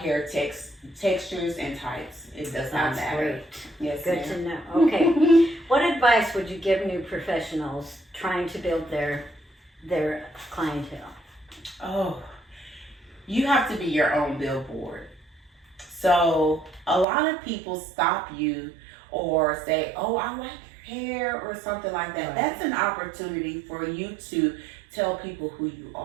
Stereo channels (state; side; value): drops out; left; at 17.1 s